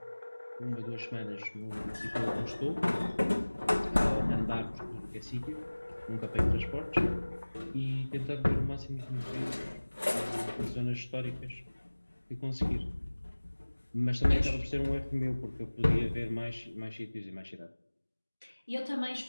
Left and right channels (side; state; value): both; inverted; correlation -1.00